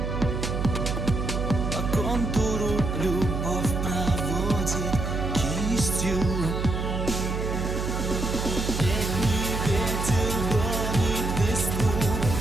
По контуру любовь проводит кистью. Летний ветер гонит листву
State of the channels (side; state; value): right; noise; hum, 2 dB below the sound